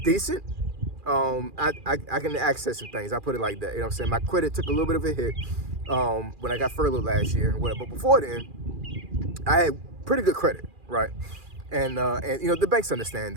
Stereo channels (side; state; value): left; late; 2.4 ms